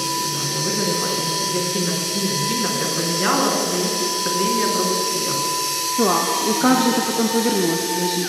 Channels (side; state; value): both; identical; correlation 1.00